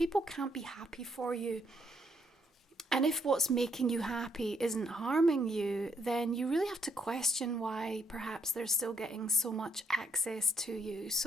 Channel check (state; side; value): normal; both; correlation 0.71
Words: can't be happy for you, and if what's making you happy isn't harming you, then you really have to question why perhaps they're still getting so much access to you.